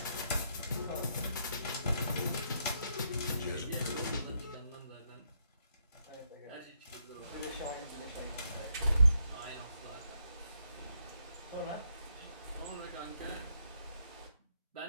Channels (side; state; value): both; inverted; correlation -0.77